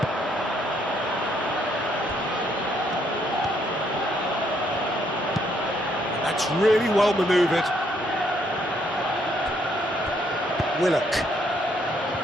That's really well manoeuvred. Willock.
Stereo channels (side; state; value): both; normal; correlation 0.71